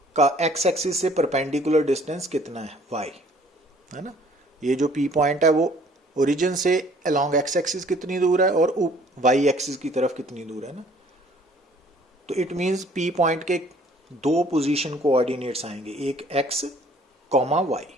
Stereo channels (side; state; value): both; normal; correlation 0.56